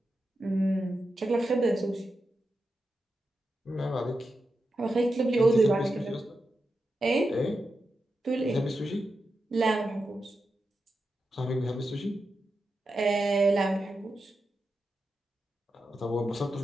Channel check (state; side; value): normal; both; correlation 0.89